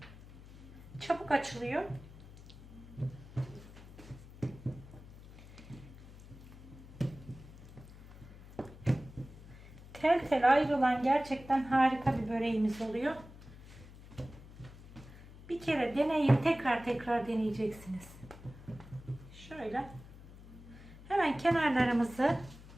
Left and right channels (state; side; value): noise; left; hum, 18 dB below the sound